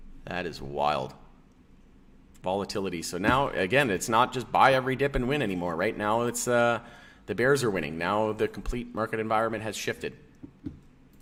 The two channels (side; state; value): both; identical; correlation 1.00